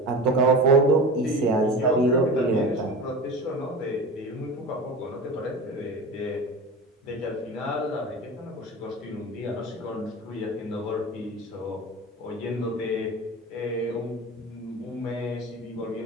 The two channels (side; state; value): both; normal; correlation 0.31